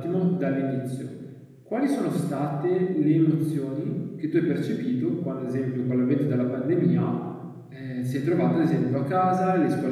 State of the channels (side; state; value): both; identical; correlation 1.00